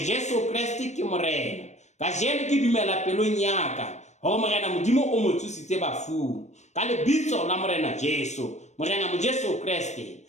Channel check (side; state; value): right; late; 0.34 ms